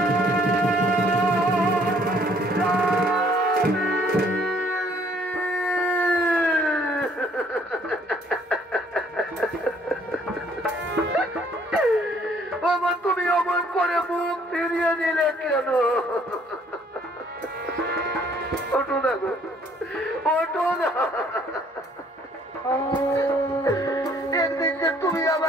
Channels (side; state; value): both; normal; correlation 0.61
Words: তুমি অমন করে মুখ ফিরিয়ে নিলে কেন? ওঠো না গো, ওঠো না। একদিন যে তুমি